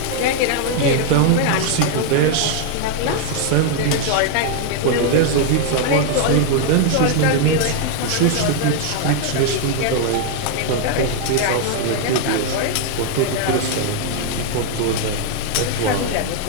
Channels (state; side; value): different; both; correlation 0.00